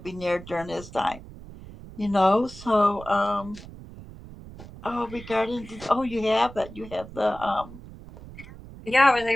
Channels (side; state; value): right; noise; rumble, 16 dB below the sound